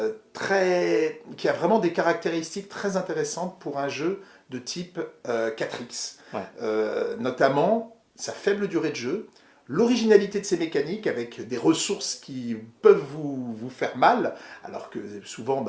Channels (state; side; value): identical; both; correlation 1.00